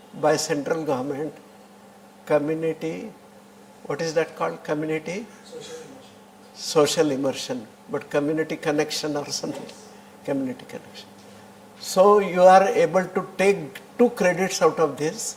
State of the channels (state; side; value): identical; both; correlation 1.00